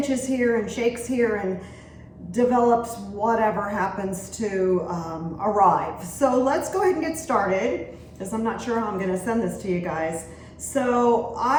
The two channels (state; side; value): identical; both; correlation 1.00